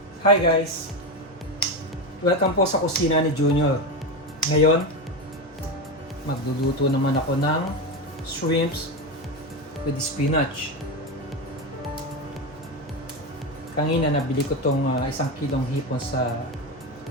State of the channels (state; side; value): normal; both; correlation 0.16